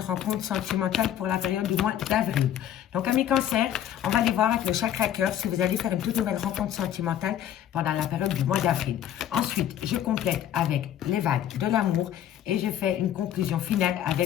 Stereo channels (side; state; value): right; quieter; 10.8 dB